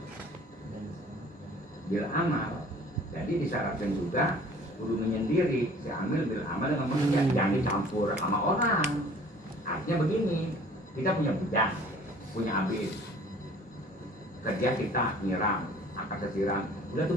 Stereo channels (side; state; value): both; normal; correlation 0.51